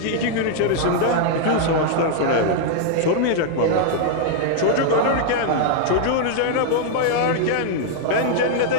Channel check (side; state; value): both; different; correlation -0.01